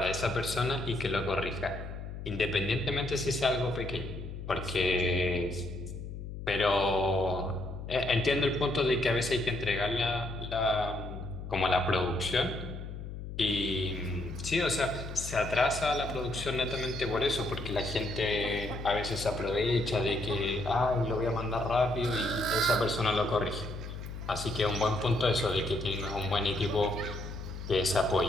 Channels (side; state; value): left; noise; hum, 9 dB below the sound